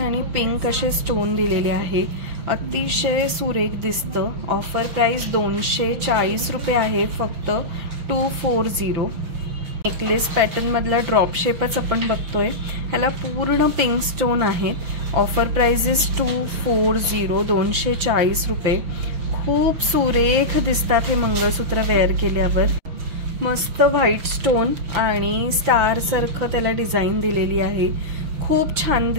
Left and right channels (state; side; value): late; left; 6.0 ms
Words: पिंक असे स्टोन दिलेले आहे. अतिशय सुरेख दिसतं. ऑफर प्राइस 240 रुपये आहे फक्त, 240. नेकलेस पॅटर्न मधला ड्रॉप शेपच आपण बघतोय. ह्याला पूर्ण पिंक स्टोन आहे. ऑफर प्राइस इज 240, 240 रुपये. खूप सुरेख दिसतात हे मंगळसूत्र वेअर केल्यावर. मस्त व्हाईट स्टोन आणि स्टार सारखं त्याला डिझाईन दिलेली आहे. खूप छान